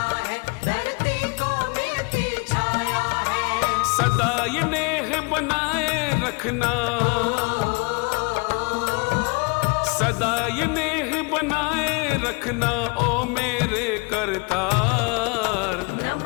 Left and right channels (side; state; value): right; quieter; 30.4 dB